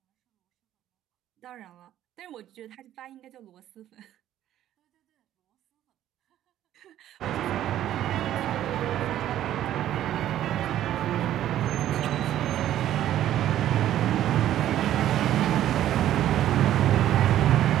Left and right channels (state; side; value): quieter; left; 12.2 dB